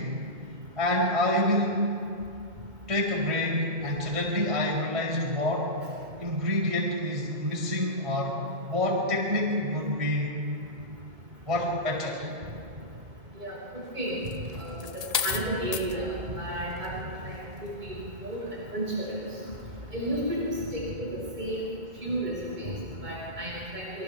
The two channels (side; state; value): left; late; 1.8 ms